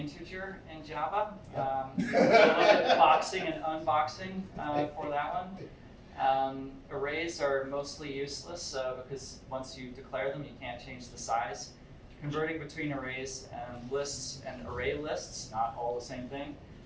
in Java. A little bit of boxing and unboxing for that one. Arrays are mostly useless because once you declare them, you can't change the size. Converting between arrays and lists and array lists, not all the same thing.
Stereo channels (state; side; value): identical; both; correlation 1.00